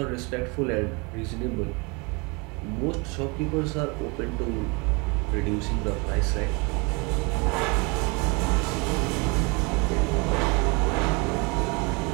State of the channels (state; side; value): quieter; left; 29.8 dB